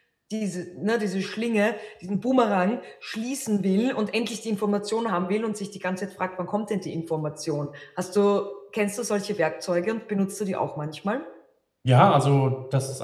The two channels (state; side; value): identical; both; correlation 1.00